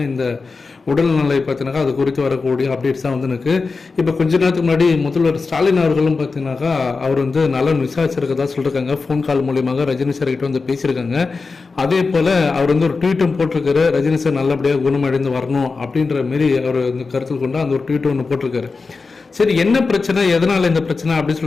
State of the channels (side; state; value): right; quieter; 4.3 dB